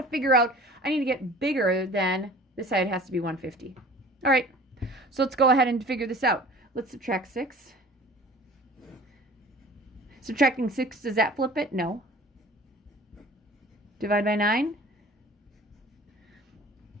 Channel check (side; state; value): both; normal; correlation 0.45